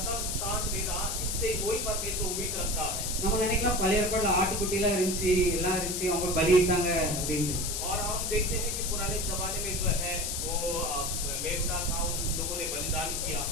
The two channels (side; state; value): left; noise; hiss, 2 dB below the sound